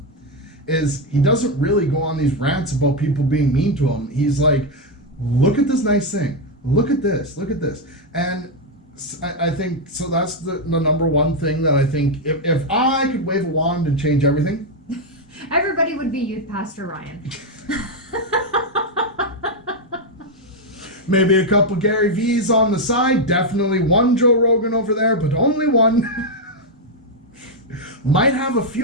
is he doesn't really go on these rants about people being mean to him. He's like, look at this nice thing. Look at this. And I think, so that's the number one thing that I think, if I could wave a wand and change everything. Everybody would be Youth Pastor Ryan. Maybe a couple Gary V's on the side. Definitely one Joe Rogan over there, but only one. Might have a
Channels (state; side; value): normal; both; correlation 0.03